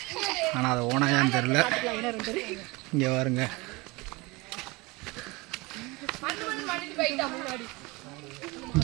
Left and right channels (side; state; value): left; quieter; 24.3 dB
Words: ஆனால் அது ஓனாயான்னு தெரில. இங்கே பாருங்க.